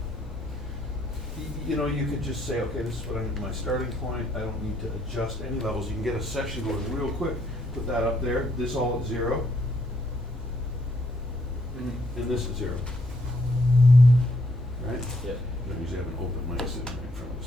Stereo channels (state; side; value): normal; both; correlation 0.70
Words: you know, you could just say, okay, this is what my starting point, I don't need to adjust any levels. You can get a section going real quick, put that up there, this all at 0, and this at 0. Right? Yeah. I usually have an open mic sitting right in front of the